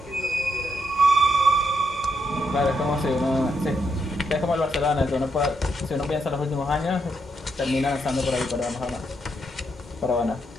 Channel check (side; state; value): both; normal; correlation 0.79